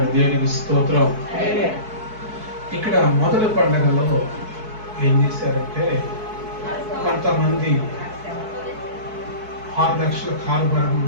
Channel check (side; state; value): left; late; 4.6 ms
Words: దేవునికి స్తోత్రం. ఇక్కడ మొదటి పండుగలో ఏం చేశారంటే కొంతమంది 6 లక్షల కారుబారం